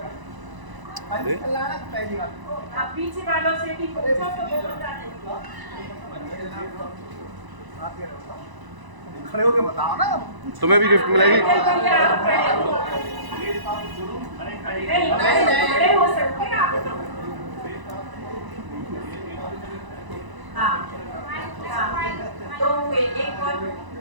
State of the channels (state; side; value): late; left; 1.0 ms